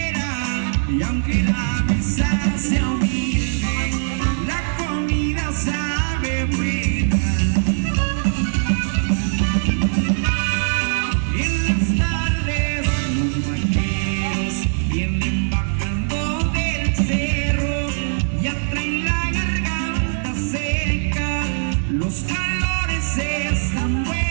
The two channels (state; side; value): silent; left; 63 dB below the other